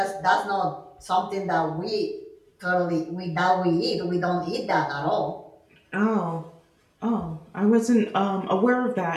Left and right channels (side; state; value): both; identical; correlation 1.00